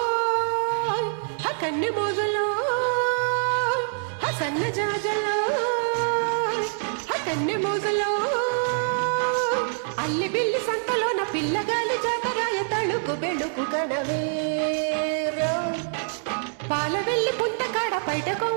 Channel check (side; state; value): left; silent; digital silence